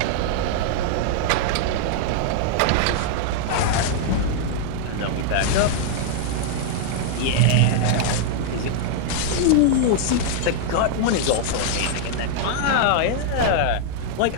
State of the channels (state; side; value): different; both; correlation -0.01